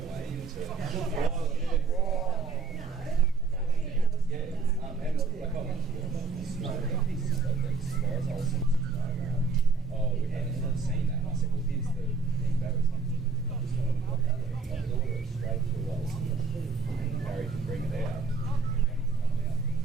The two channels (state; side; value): quieter; left; 4.4 dB